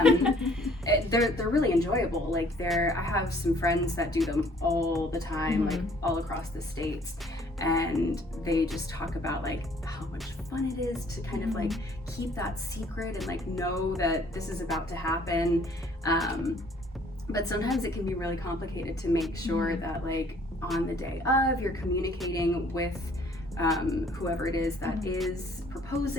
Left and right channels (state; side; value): normal; both; correlation 0.59